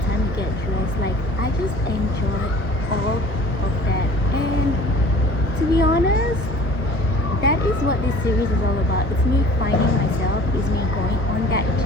time to get dressed. Like I just enjoy all of that. And to be honest, that is what this series is all about. It's me finding myself, it's me going on that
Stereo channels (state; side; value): normal; both; correlation 0.48